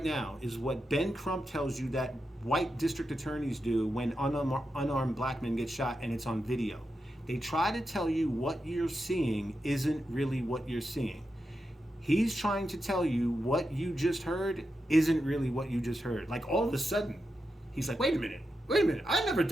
now is what Ben Crump tells you that white district attorneys do when unarmed black men get shot and it's on video. They try to tell you what you're seeing isn't really what you're seeing. He's trying to tell you what you just heard isn't really what you just heard. Like all of a sudden, he's like, wait a minute. I never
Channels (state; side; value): normal; both; correlation 0.88